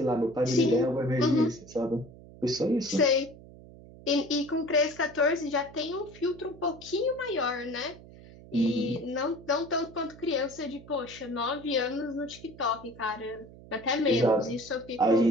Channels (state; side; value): noise; right; hum, 19 dB below the sound